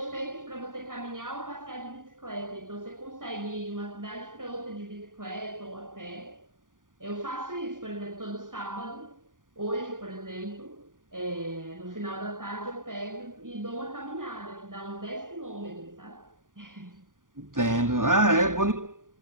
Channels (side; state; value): left; late; 0.89 ms